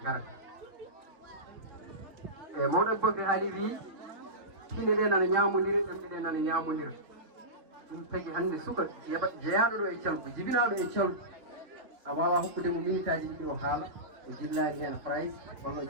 garata e mawɗo Aboubacry haali wi tine ɗe nana ñamodira ɗemɗe ɗe nana ñamodira ɗum tagui hande suka jeeyaɗo ɗo e Thialgou jibinaɗo e Thialgou a wawa hokkude mo minute aji ɗiɗi o haala o jillani hen phrase walla o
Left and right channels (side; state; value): left; late; 3.5 ms